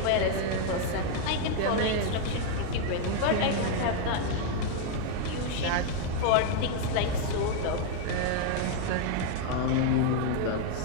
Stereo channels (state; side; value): different; both; correlation 0.00